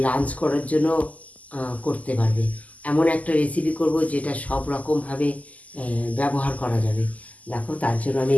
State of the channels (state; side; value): late; right; 0.074 ms